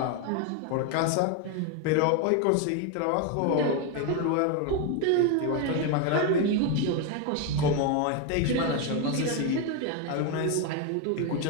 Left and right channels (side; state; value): both; different; correlation 0.01